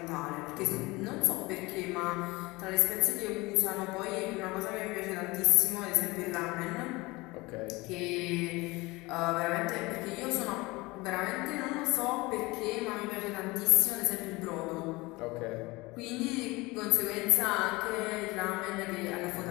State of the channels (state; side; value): quieter; right; 22.7 dB